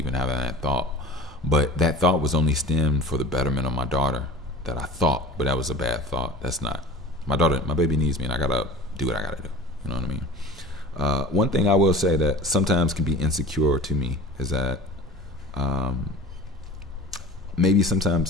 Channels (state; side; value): normal; both; correlation 0.39